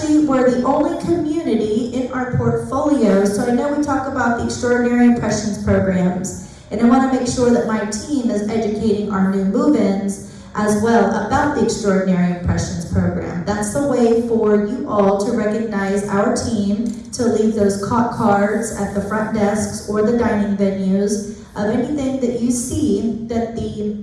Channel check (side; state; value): both; identical; correlation 1.00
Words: we're the only community in our portfolio, so I know we talk about the Extraordinary Impressions programs, and I want to make sure that my team is educating our new move-ins as well about the Extraordinary Impressions program. That's the way for you all to recognize our team, to leave those cards at the front desks or the dining venues of anything that you see that the